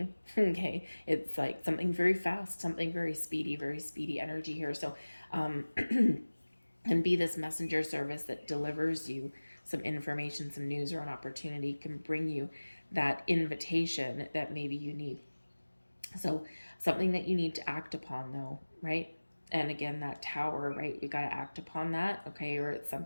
Okay, it's like something very fast, something very speedy energy here. So and be this messenger service that delivers you some information, some news, or an opportunity, can bring you that invitation that maybe you need. So something that you need to act upon though, right? And again, that Tower, right? We got to act upon that, okay? Or it's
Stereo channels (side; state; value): both; inverted; correlation -1.00